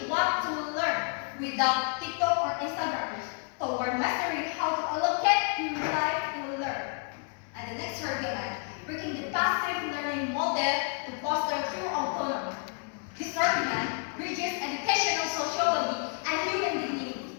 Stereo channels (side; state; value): right; quieter; 39.8 dB